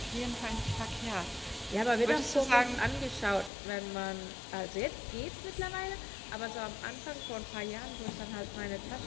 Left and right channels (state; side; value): drops out; right; at 3.5 s